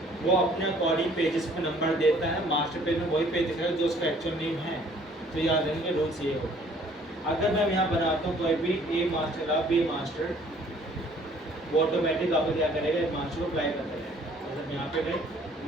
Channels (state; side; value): normal; both; correlation 0.58